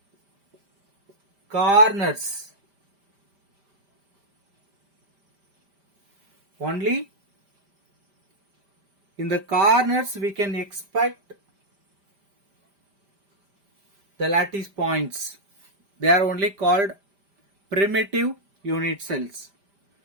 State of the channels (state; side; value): late; left; 5.1 ms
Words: corners. Only in the corners we can expect the lattice points. They are only called primitive unit cells.